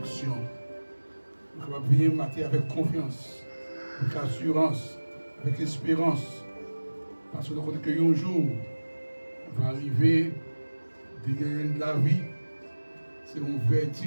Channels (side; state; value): both; inverted; correlation -1.00